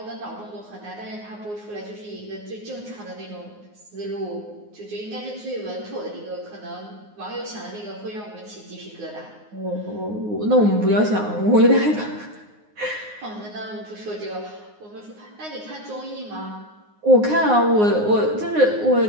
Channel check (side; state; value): left; late; 9.6 ms